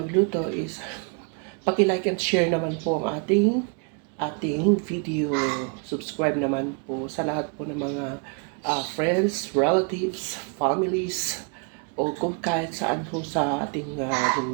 is paki-like and share naman po ang ating video. Subscribe naman po sa lahat po ng mga friends, relatives, families, o kung kahit saan po sa ating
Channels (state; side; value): quieter; left; 38.3 dB